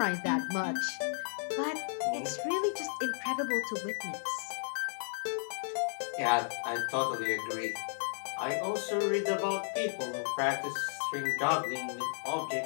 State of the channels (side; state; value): right; silent; digital silence